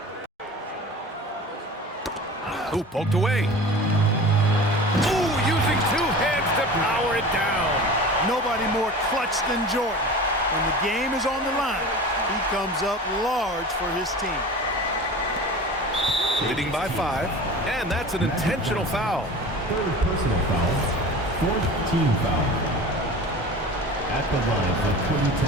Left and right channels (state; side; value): normal; both; correlation 0.36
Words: Ooh, poked away. Ooh, using 2 hands to power it down. Nobody more clutch than Jordan. When the game is on the line, he comes up large for his team. Leading by 5, and that's an intentional foul. Third personal foul. Fourth team foul. At the line for